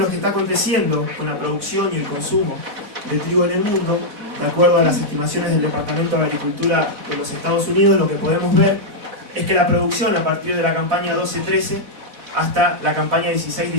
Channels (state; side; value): late; left; 4.0 ms